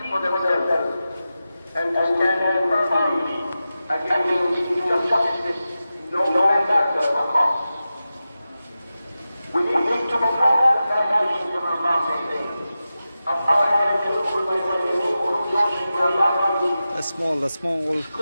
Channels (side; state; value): both; inverted; correlation -0.93